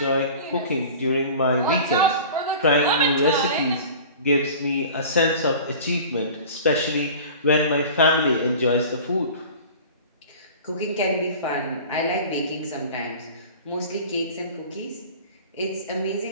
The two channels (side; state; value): both; inverted; correlation -0.39